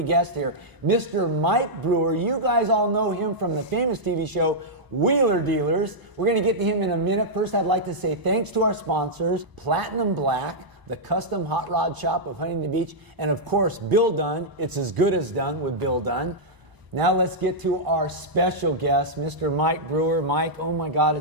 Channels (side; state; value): left; late; 1.0 ms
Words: guest here, Mr. Mike Brewer. You guys all know him from the famous TV show Wheeler Dealers. We're going to get to him in a minute. First, I'd like to say thanks to our sponsors, Platinum Black, the custom hot rod shop of Huntington Beach, and of course, Bill Dunn. It's as good as done with Bill Dunn. Now let's get to our special guest, Mr. Mike Brewer. Mike, oh my God,